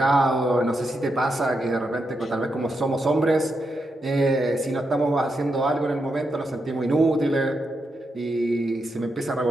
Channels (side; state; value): both; normal; correlation 0.84